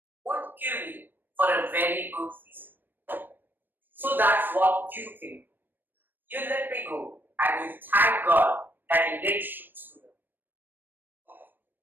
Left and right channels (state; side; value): late; left; 0.093 ms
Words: Won't kill me for a very good reason. So that's what you think. You let me go and you thank God that you didn't shoot through them.